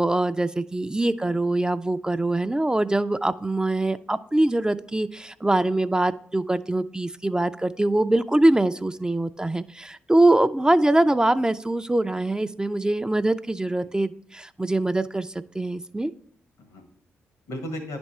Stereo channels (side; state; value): both; normal; correlation 0.97